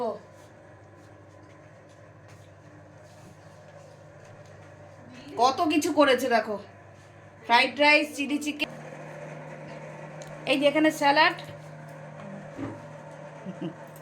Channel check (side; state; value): both; identical; correlation 1.00